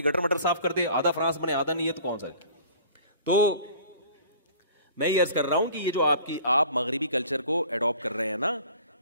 گٹر مٹر صاف کر دے، آدھا فرانس بنے آدھا نہیں ہے تو کون سا ہے؟ تو میں یہ عرض کر رہا ہوں کہ یہ جو آپ مغربی کلچر کو اڈاپٹ کر رہے ہیں نا،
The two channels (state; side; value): inverted; both; correlation -0.47